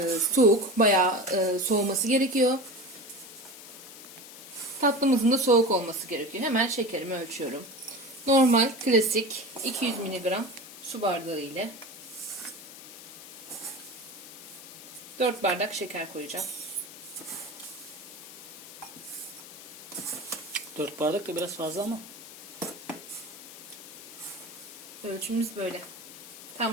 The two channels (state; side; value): noise; left; hiss, 15 dB below the sound